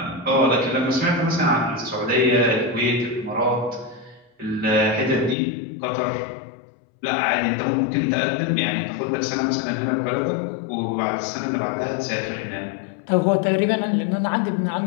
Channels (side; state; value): right; drops out; at 5.4 s